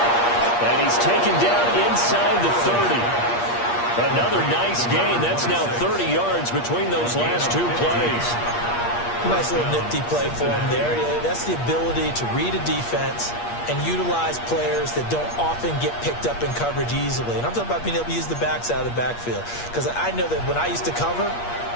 And he's taken down inside the 30. Another nice gain. That's now 30 yards between those last two plays. Nice little nifty play for him there. That's the ability to read a defense and utilize players that don't often get picked up in coverage easily. And I'm talking about being able to use the backs out of the backfield. Because I know that when I used to cover,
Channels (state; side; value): late; right; 8.5 ms